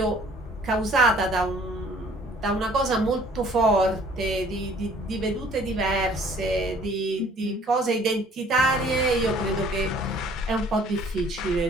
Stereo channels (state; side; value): normal; both; correlation 0.55